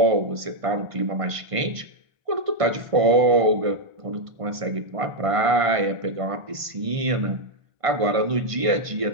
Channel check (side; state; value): left; late; 1.5 ms